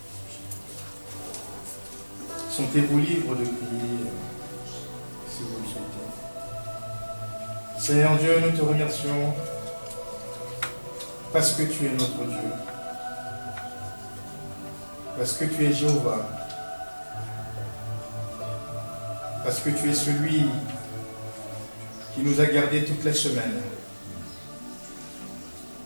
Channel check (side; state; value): both; inverted; correlation -1.00